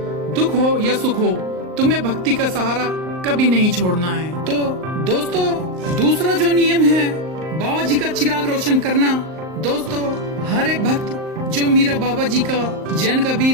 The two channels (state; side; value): late; left; 38 ms